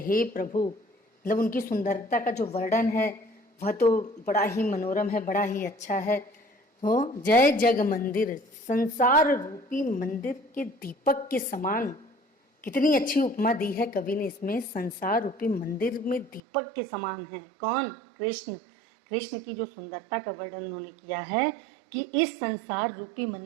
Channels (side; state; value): left; drops out; at 16.4 s